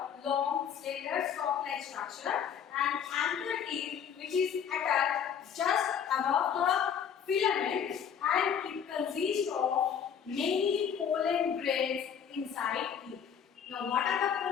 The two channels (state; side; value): quieter; right; 8.0 dB